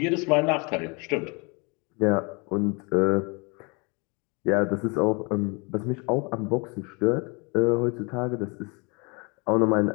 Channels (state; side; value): quieter; right; 30.6 dB